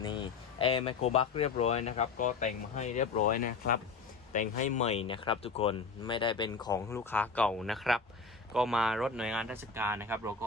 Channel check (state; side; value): quieter; right; 4.8 dB